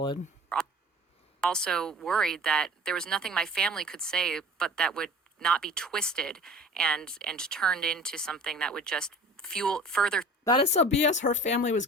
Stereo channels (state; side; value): normal; both; correlation 0.43